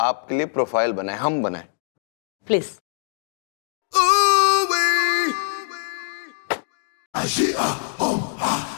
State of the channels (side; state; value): right; silent; digital silence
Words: आपके लिए प्रोफाइल बनाए, हम बनाए प्लीज।